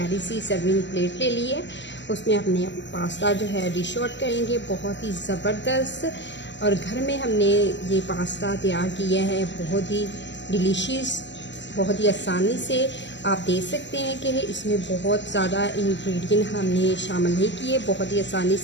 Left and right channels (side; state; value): right; late; 0.53 ms